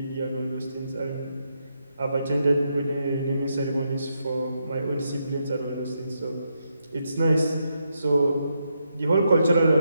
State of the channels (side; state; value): both; inverted; correlation -0.81